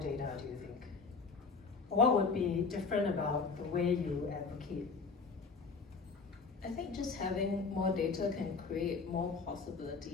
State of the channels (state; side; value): quieter; right; 4.7 dB